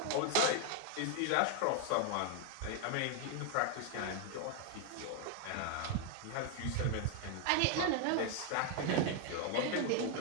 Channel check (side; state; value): both; different; correlation 0.01